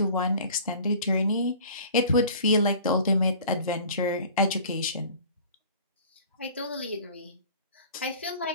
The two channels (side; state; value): both; inverted; correlation -0.46